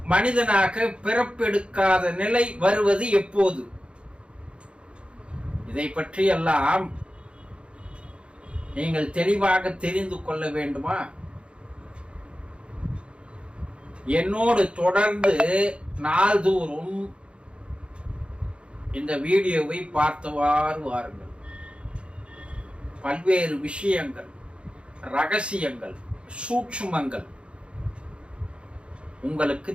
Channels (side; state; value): left; late; 0.057 ms